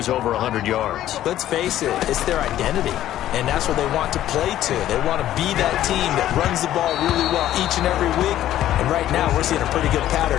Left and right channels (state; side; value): quieter; right; 12.8 dB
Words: over 100 yards. Let's face it, it's their identity, and that's what they want to play to. They want to be that team that runs the ball really well each and every week, and right now we're seeing a pretty good